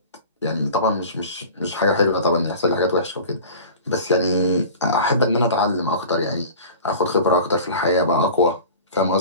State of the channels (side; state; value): both; inverted; correlation -0.39